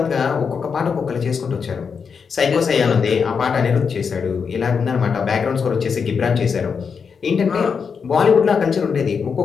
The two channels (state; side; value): quieter; right; 6.0 dB